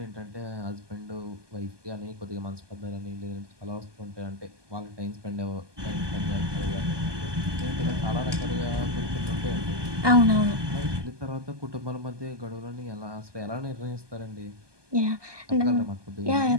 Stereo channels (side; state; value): left; late; 1.2 ms